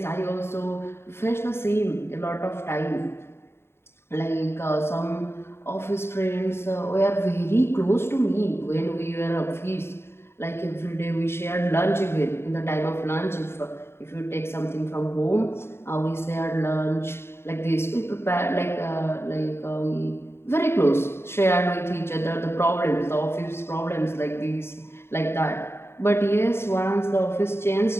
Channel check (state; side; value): late; right; 0.12 ms